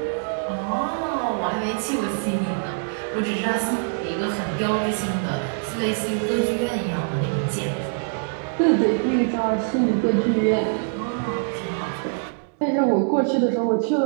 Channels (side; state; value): left; silent; 63 dB below the other